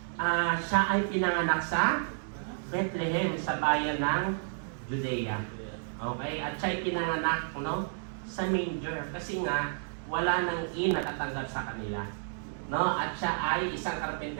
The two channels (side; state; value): left; silent; 57 dB below the other